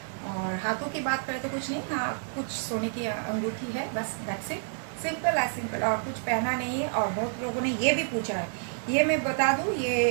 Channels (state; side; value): silent; left; digital silence